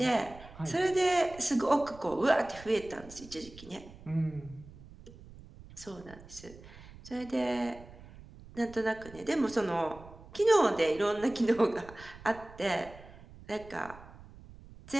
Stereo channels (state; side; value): noise; right; rumble, 19 dB below the sound